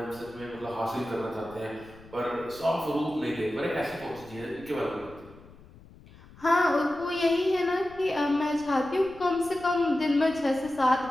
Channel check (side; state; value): left; noise; rumble, 22 dB below the sound